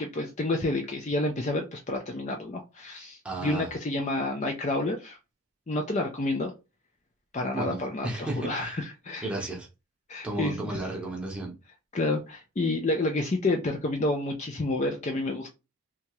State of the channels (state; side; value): normal; both; correlation 0.43